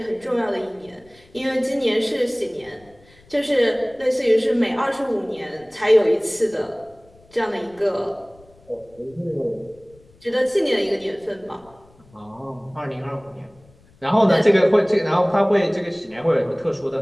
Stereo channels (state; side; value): noise; left; rumble, 28 dB below the sound